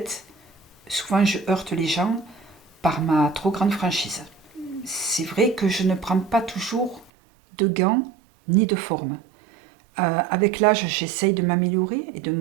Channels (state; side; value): drops out; left; at 7.1 s